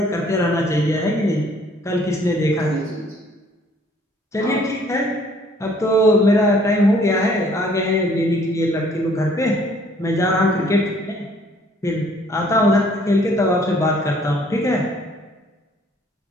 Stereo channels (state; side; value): normal; both; correlation 0.60